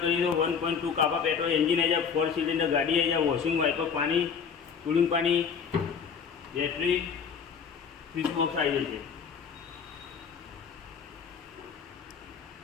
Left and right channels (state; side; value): quieter; right; 6.5 dB